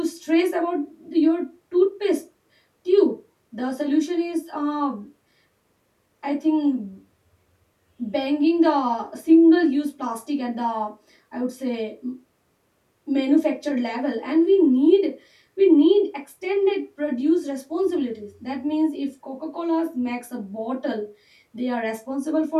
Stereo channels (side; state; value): both; identical; correlation 1.00